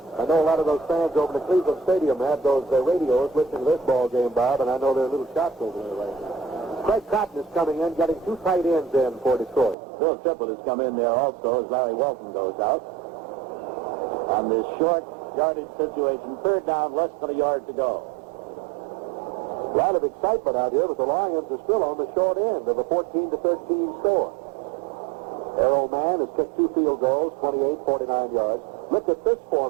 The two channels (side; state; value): left; drops out; at 9.8 s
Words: I know a lot of those fans over in the Cleveland Stadium have those radios listening to this ball game, Bob, and I know there are little shots over there right now. Craig Cotton is coming in, getting two tight ends in for Detroit. Bill Triplett has come in there also as Larry Welton goes out. On this short yardage situation, third down, less than a yard to go. A lot of excitement out here, but the Lions are still on the short end of a 14-13 score. Arrow Man has kicked two field goals, 28, 49 yards. Look at this